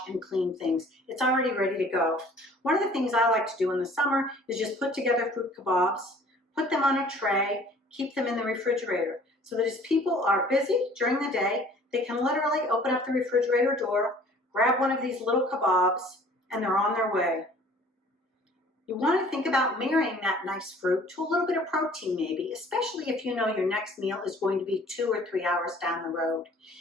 and clean things. It's already ready to go. One of the things I like to do in the summer is just put together fruit kebabs, put them on a tray, keep them in the refrigerator so that as people are busy during the day, they can literally open up the refrigerator door, grab one of these little kebabs, and they're on their way. You want to think about marrying that nice fruit to a little bit of protein maybe, especially if you know your next meal is going to be 2 or 3 hours down the road.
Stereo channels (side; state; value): both; normal; correlation 0.52